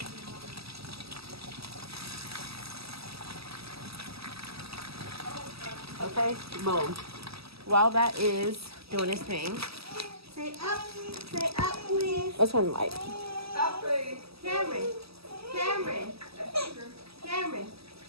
Okay, boom. While that is doing its thing. Say up, please. Let's turn the light. Up, please. Cameron.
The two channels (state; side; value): late; left; 0.77 ms